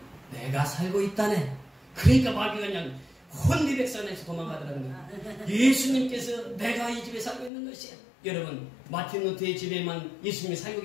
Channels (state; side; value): drops out; right; at 7.5 s